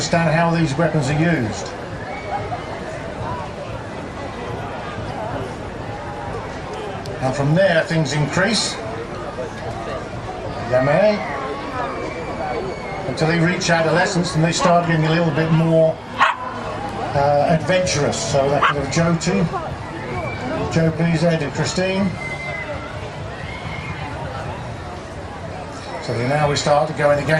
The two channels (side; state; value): both; identical; correlation 1.00